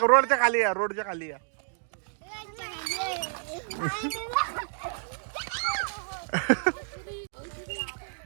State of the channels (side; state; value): left; silent; digital silence